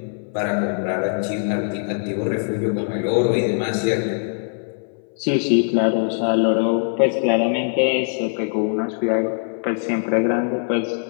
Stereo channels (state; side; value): silent; right; 61 dB below the other